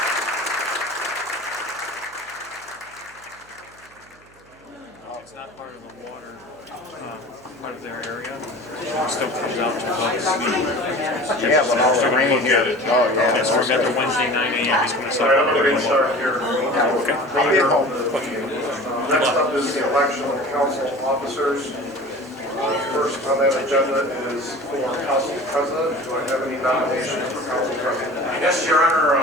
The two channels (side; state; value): right; noise; hum, 28 dB below the sound